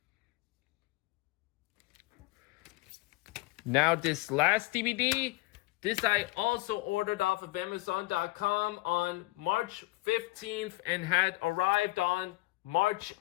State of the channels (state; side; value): quieter; right; 21.1 dB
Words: Now this last DVD, this I also ordered off of Amazon.com on March 15th and had arrived on March